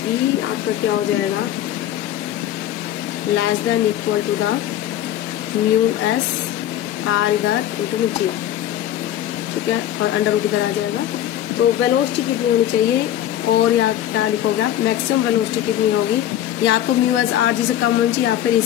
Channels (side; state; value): right; quieter; 12.0 dB